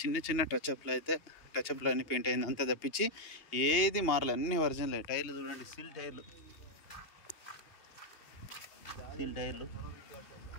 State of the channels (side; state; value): right; late; 2.8 ms